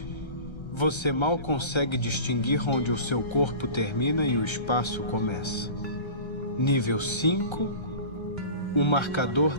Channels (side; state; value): right; late; 1.3 ms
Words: você mal consegue distinguir onde o seu corpo termina e o espaço começa. Nível 5, o marcador